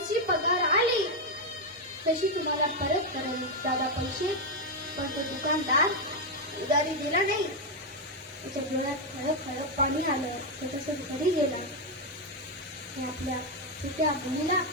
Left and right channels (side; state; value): both; normal; correlation 0.03